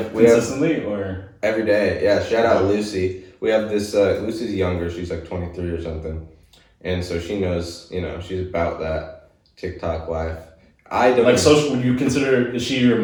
Consistently or? Every day, yeah. Shout out Lucy. We have this, Lucy's younger, she's like 23 or something. And so she knows, she's about that TikTok life. I don't like social. Would you consider? Is she your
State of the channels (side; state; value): both; identical; correlation 1.00